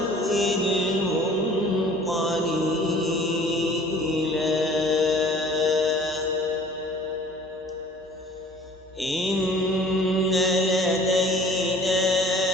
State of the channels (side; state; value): both; normal; correlation 0.50